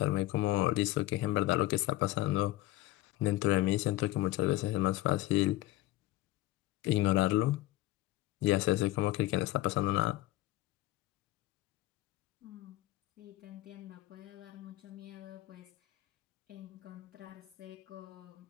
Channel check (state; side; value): quieter; right; 16.6 dB